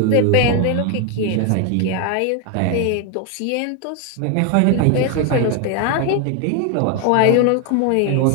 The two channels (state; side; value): different; both; correlation 0.01